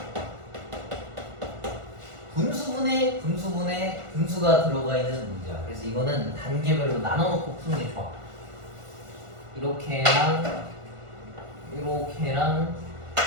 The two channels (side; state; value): left; late; 1.4 ms